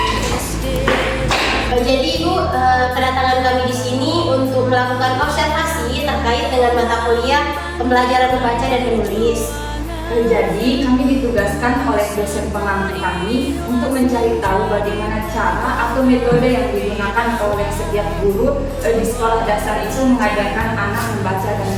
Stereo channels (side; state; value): both; identical; correlation 1.00